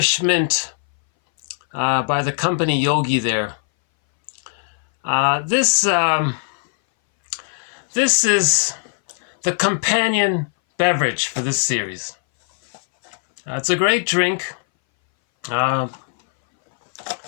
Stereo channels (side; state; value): right; silent; 61 dB below the other